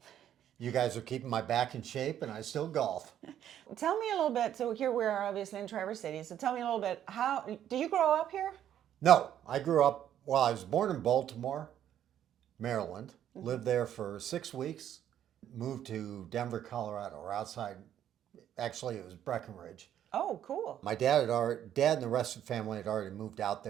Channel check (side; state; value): left; quieter; 10.6 dB